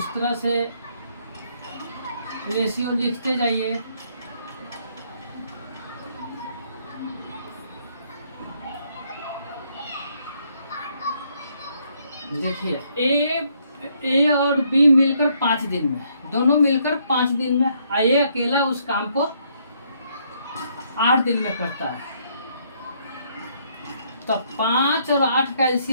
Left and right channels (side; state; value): both; inverted; correlation -0.70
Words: तरह से रेशियो लिखते जाइए। देखिए ए और बी मिलकर 5 दिन में, दोनों मिलकर 5 दिन में, ए अकेला उस काम को 8 दिन में करता है। तो 5 और 8 का